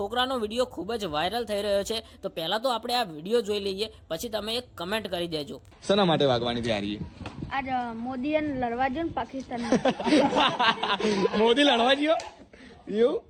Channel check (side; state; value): both; identical; correlation 1.00